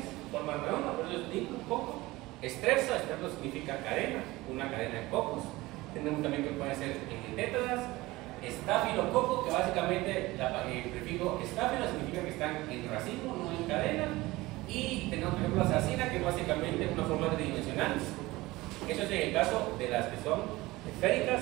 forman redonda, por eso es diplococo. Estrepsa, estrepto significa cadena, una cadena de cocos. Tenemos también que pueden ser tétradas. Estafilococo, que básicamente el prefijo estáfilo significa que están en racimo, no en cadena. Y tenemos por ejemplo la sarcina, que básicamente es una forma tridimensional. Eso es en el caso de las que son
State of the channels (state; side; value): quieter; left; 19.9 dB